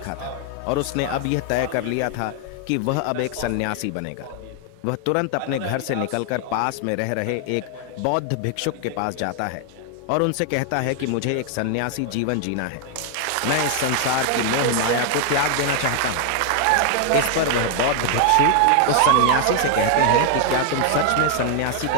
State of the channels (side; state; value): both; different; correlation 0.00